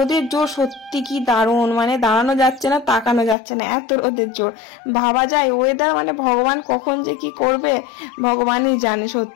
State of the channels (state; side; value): drops out; right; at 3.4 s